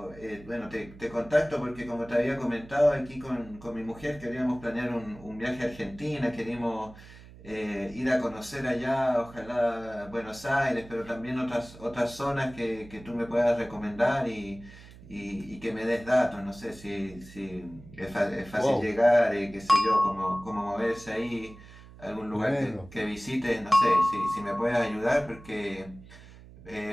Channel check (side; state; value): right; noise; hum, 19 dB below the sound